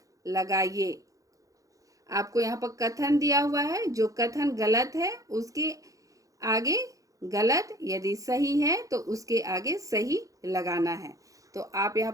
लगाइए। आपको यहाँ पर कथन दिया हुआ है, जो कथन गलत है उसके आगे गलत, यदि सही है तो उसके आगे सही लगाना है। तो आप यहाँ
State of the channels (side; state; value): left; late; 0.16 ms